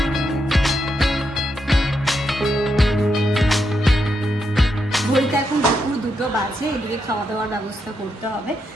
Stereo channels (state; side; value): normal; both; correlation 0.82